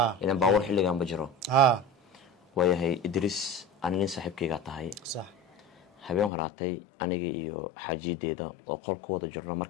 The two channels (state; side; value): drops out; right; at 6.3 s